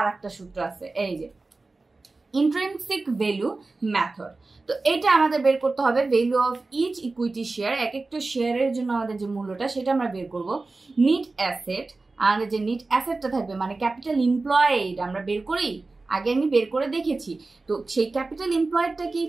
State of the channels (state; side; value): quieter; left; 3.5 dB